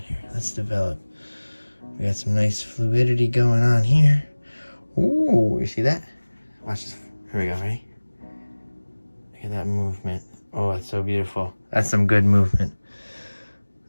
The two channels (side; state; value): both; inverted; correlation -1.00